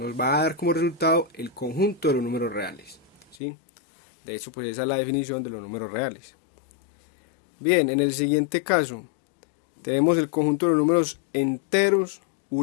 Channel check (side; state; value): right; drops out; at 3.4 s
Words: va a dar como resultado el conjunto de los números reales, ¿sí? De hecho, pues esa es la definición de los números reales. Bien, en el siguiente caso tenemos el conjunto de los números enteros